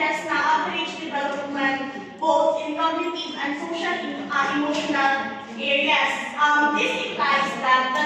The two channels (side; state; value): both; identical; correlation 1.00